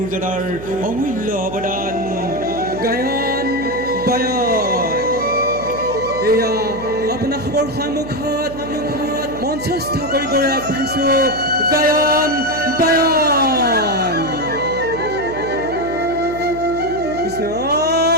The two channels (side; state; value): right; noise; hum, 12 dB below the sound